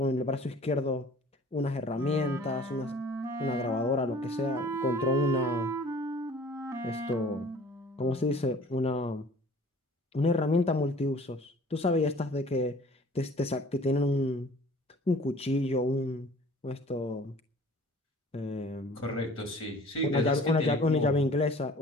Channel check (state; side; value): normal; both; correlation 0.49